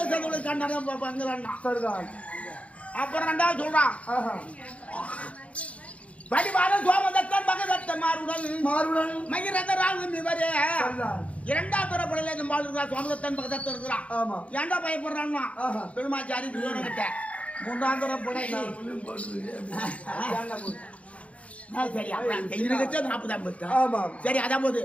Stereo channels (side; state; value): right; late; 0.064 ms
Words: சேர்ந்தவங்களை கண்டாதான் பங்குறான். அப்புறம் ரெண்டாவது சொல்றான் படிவாரன் சோமதத்தன் மகதத்தன் மாறுடன் மகிரதராகும் இவரே. இரண்டாவது தரப்படையில இந்த மாதிரி இருக்கிறான் சோமதத்தன் மகதத்தன் இருக்கிறான். ஏன்டா பயப்படுறான்னா பெருமாச்சாரி துரியோதனன். மூன்றாம் தரப்படை சரி 40 சரி அதான் போது